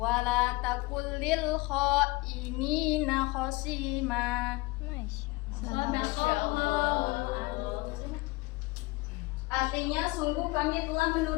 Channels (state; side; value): quieter; right; 22.9 dB